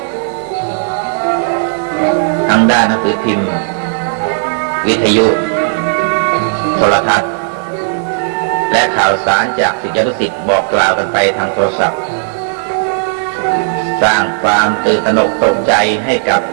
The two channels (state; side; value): silent; left; digital silence